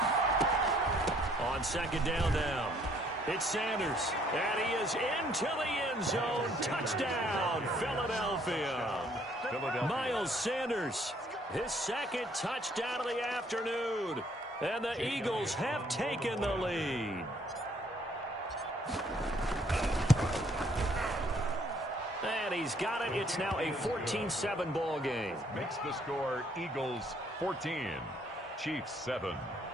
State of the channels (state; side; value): normal; both; correlation 0.64